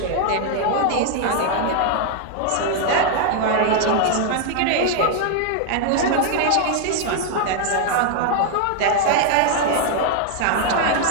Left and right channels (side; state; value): both; different; correlation 0.00